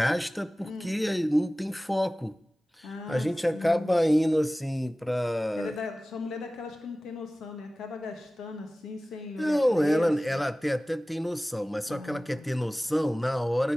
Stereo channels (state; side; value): normal; both; correlation 0.97